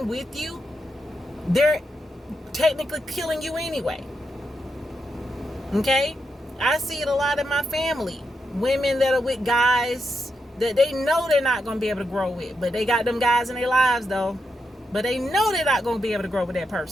with you, they're technically killing you anyway. Okay? I see it a lot in my family. Women that are with guys that they know they're not going to be able to grow with, but they got them guys in their lives though. But they know they're not going to be able to grow with that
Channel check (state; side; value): normal; both; correlation 0.84